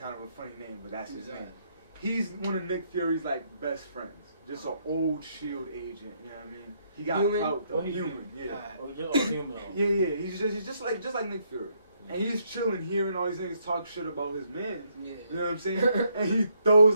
of a funny name, but that's his name. He's one of Nick Fury's like best friends. Just an old SHIELD agent, you know what I mean? He got clout though. Human, yeah. Human. Yeah. He's just like Nick Fury. And he's chilling, hearing all these niggas talk shit about his man. You know what I'm saying? And he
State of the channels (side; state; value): both; inverted; correlation -0.73